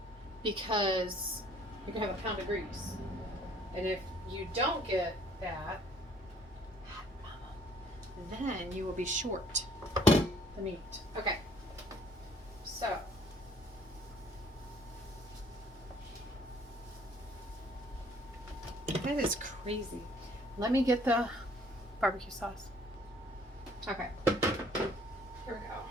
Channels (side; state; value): both; normal; correlation 0.59